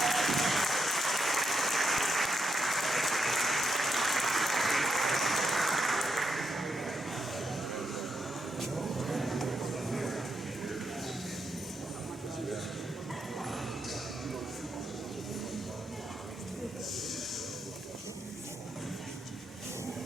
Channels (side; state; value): both; normal; correlation 0.82